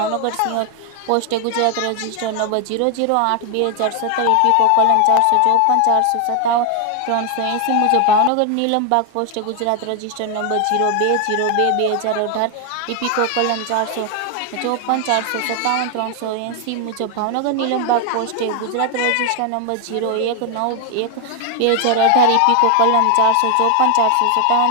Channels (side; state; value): both; different; correlation 0.00